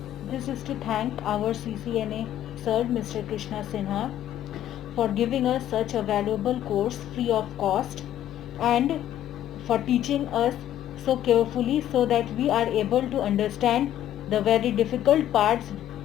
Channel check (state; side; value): quieter; right; 11.8 dB